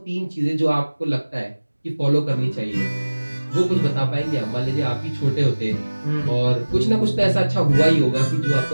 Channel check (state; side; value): inverted; both; correlation -1.00